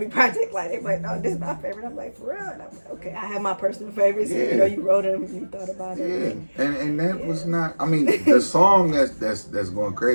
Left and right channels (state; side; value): inverted; both; correlation -1.00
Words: project, like they're like, no, this is my favorite. I'm like, for real? And I'm like, okay, I have my personal favorites. Yeah. You wrote them, you thought about it. Yeah, and that was not. I mean, the song that's going